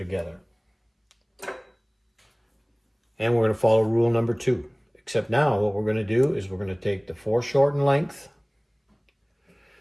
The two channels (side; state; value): both; identical; correlation 1.00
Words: And we're going to follow rule number 2. Except now what we're going to do is we're going to take the foreshortened length